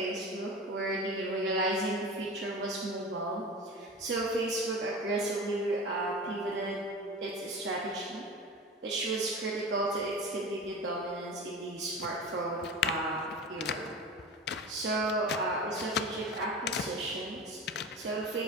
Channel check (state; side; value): normal; both; correlation 0.32